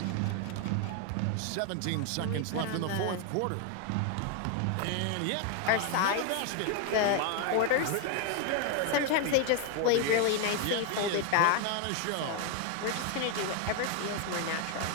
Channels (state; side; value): different; both; correlation 0.01